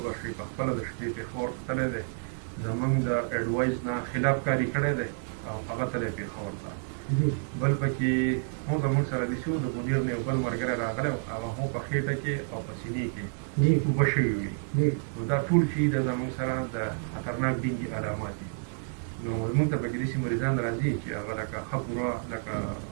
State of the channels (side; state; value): left; silent; 58 dB below the other